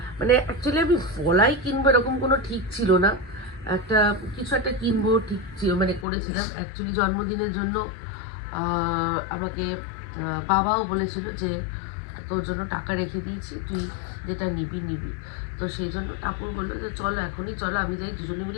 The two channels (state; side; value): drops out; right; at 6.1 s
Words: মানে অ্যাকচুয়ালি আমি পলাই কিনবো এরকম কোনো ঠিক ছিল না, কিছু একটা কিনবো ঠিক ছিল, মানে করেছিলাম। অ্যাকচুয়ালি জন্মদিনের জন্য আমাকে বাবাও বলেছিল যে তোর জন্য টাকা রেখে দিয়েছি, তুই যেটা নিবি। তো সেই জন্য টাপুর বললো যে চলো এখনই চলো, আমি যাই, দুজনে